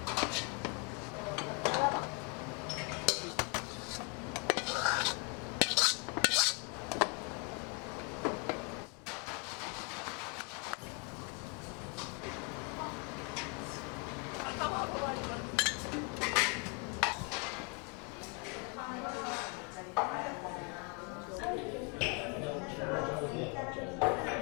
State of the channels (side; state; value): right; quieter; 34.7 dB